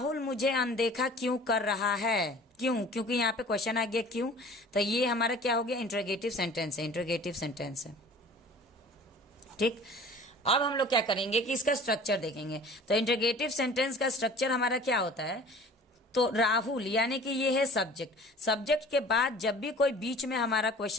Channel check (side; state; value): both; normal; correlation 0.45